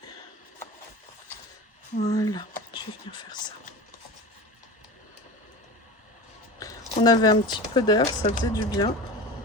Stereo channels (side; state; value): both; normal; correlation 0.31